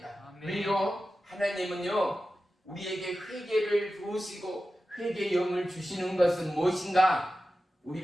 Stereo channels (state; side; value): normal; both; correlation 0.93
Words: 아멘. 왜요? 하나님은요 우리에게 회개를 부으시고 회개의 영을 주시는 것은 무엇인가?